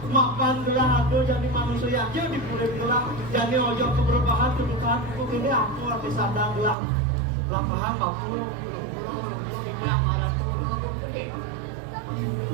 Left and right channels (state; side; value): drops out; left; at 6.8 s